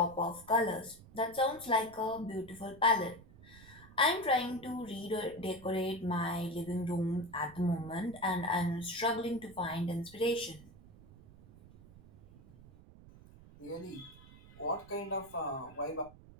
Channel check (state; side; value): noise; right; rumble, 21 dB below the sound